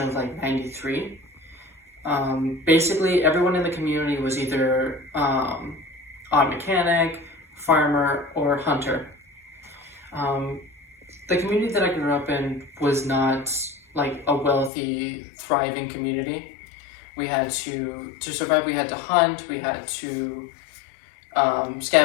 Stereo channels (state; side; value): drops out; right; at 14.7 s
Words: of like 93. Basically, everyone in the community was either auto mechanic, farmer, or hunter. The community that I grew up in was not like a wealthy, thriving community. We had to survive, we had to hunt, we had to